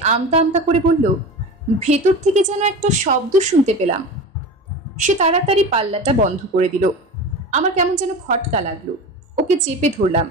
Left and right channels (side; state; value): both; normal; correlation 0.30